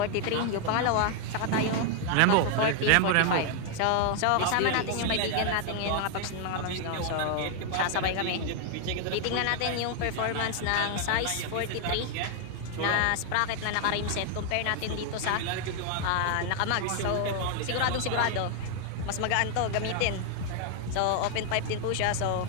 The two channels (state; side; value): different; both; correlation 0.00